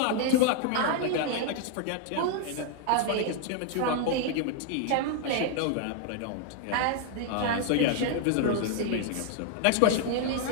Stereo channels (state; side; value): different; both; correlation 0.00